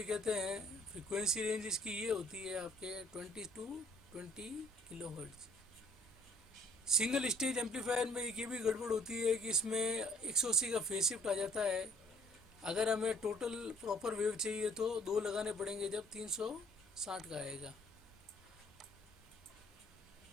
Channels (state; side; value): normal; both; correlation 0.59